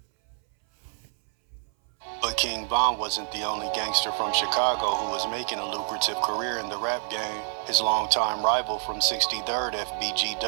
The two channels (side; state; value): left; silent; 59 dB below the other